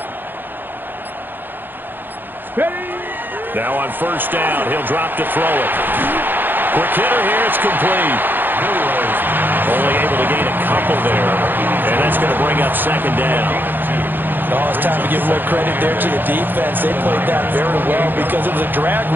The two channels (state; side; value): late; left; 0.093 ms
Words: Now on first down, he'll drop to throw it. Quick hitter here, it's complete. Only able to gain a couple there, and that's going to bring up second down. Oh, it's time to give more credit there to the defense. They played that very well because it was a drag